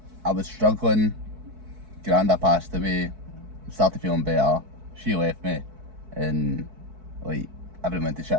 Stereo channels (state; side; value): late; left; 4.6 ms